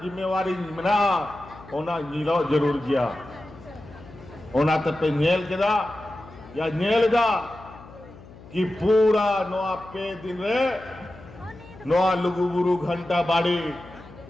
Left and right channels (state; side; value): noise; left; hum, 19 dB below the sound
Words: जिम्मेवारी मिला ओना नीलो जरूर किया ओना तब पे नेल केदा या नेल गा कि पूरा नवा पे दिन रे नवा लुगुबुरु घंटा बाड़ी